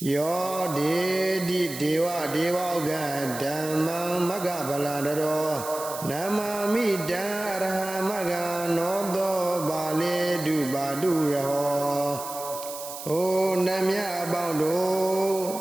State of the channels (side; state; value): right; noise; hiss, 10 dB below the sound